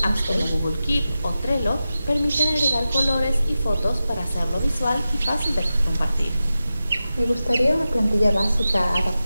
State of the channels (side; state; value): both; inverted; correlation -0.93